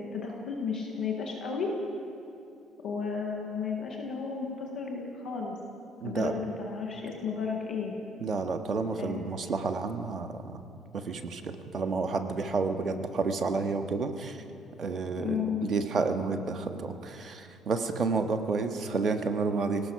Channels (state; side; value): normal; both; correlation 0.62